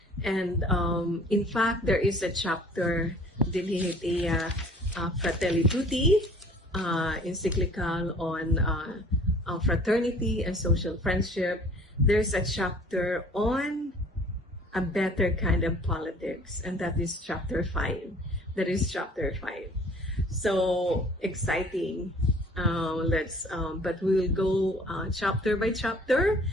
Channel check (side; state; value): both; normal; correlation 0.51